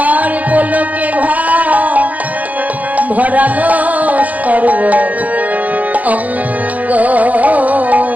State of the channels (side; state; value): left; late; 0.076 ms